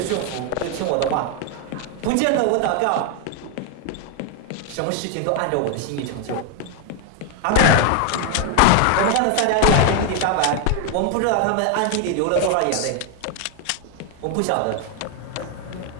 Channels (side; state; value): both; different; correlation 0.01